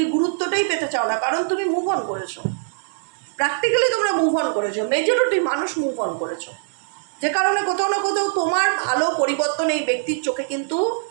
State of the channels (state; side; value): silent; left; digital silence